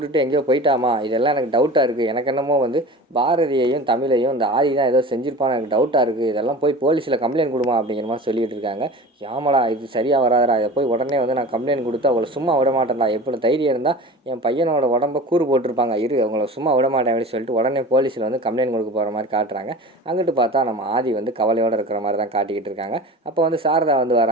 எங்கேயோ போயிட்டாமா, இதெல்லாம் எனக்கு டவுட்டாக இருக்குது. எனக்கு என்னமோ வந்து பாரதியையும் தமிழையும் இந்த ஆதி தான் ஏதோ செஞ்சுருப்பான்னு எனக்கு டவுட்டாக இருக்குது. இதெல்லாம் போய் போலீஸில் கம்ப்ளைண்ட் கொடுமா அப்படிங்கிற மாதிரி சொல்லிகிட்டு இருக்காங்க. ஆமாடா இது சரியாக வராதடா, இதை போய் உடனே வந்து நான் கம்ப்ளைண்ட் கொடுத்து அவளை சும்மா விட மாட்டேன்டா, எப்படி தைரியம் இருந்தால் என் பையனோட உடம்ப கூறு போட்டிருப்பாங்க, இரு அவங்கள சும்மா விட மாட்டேன் அப்படின்னு சொல்லிட்டு உடனே போலீஸில் வந்து கம்ப்ளைண்ட் கொடுக்க போகிற மாதிரி காட்டுறாங்க. அங்கிட்டு பார்த்தா நம்ம ஆதி வந்து கவலையோடு இருக்கிற மாதிரி தான் காட்டிக்கிட்டு இருக்காங்க. அப்போ வந்து சாரதா வந்து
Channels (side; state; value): both; normal; correlation 0.36